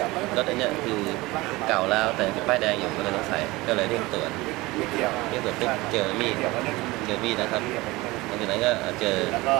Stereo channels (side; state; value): left; quieter; 21.1 dB